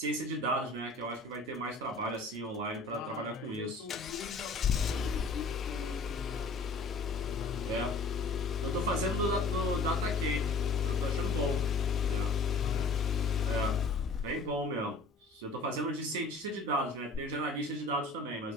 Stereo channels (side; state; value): right; quieter; 3.2 dB